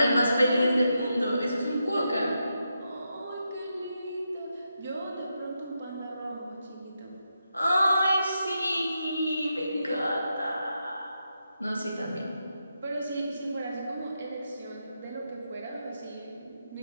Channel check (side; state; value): both; inverted; correlation -0.85